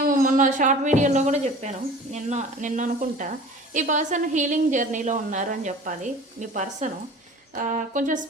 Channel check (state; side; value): normal; both; correlation 0.42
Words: మొన్న షార్ట్ వీడియోలో కూడా చెప్పాను, నిన్న అనుకుంటా, ఈ పర్సన్ హీలింగ్ జర్నీలో ఉన్నారు అని చెప్పాలి. మీ పర్సను కొంచెం